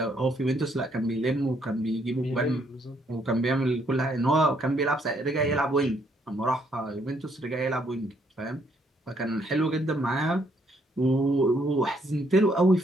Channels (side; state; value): both; normal; correlation 0.70